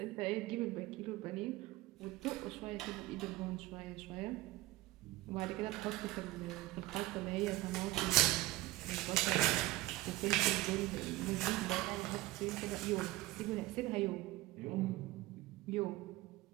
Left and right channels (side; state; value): left; quieter; 18.7 dB